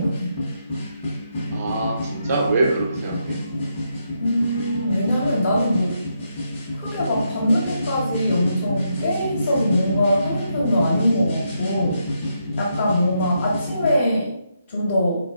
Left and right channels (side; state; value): both; inverted; correlation -0.80